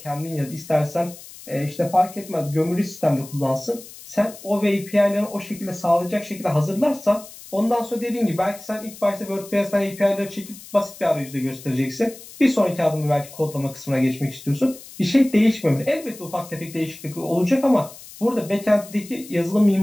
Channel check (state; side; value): noise; left; hiss, 17 dB below the sound